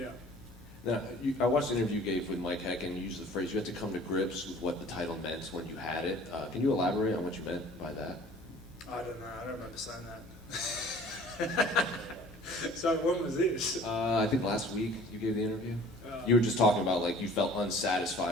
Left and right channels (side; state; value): both; normal; correlation 0.49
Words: out. Now, I watched the interview you gave with Mike Heck, and you used the phrase you had to come to grips with what the title meant when you had it. Can you elaborate on what you meant by that? I don't know. I don't remember saying that. So when was this? I think last week you gave the interview. You were just talking about like you felt